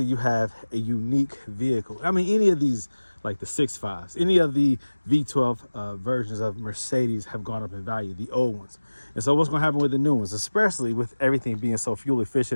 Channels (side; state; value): both; inverted; correlation -1.00